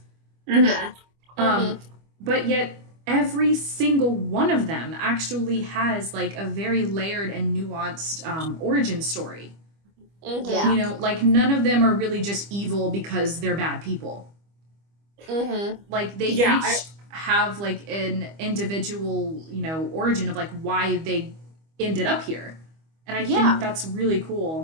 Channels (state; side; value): late; left; 25 ms